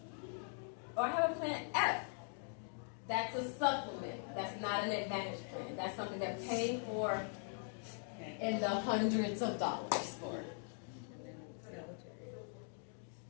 or I have a plan F, that's a supplement. That's not an Advantage plan. That's something they're paying for in the hundreds of dollars for.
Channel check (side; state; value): right; silent; 50 dB below the other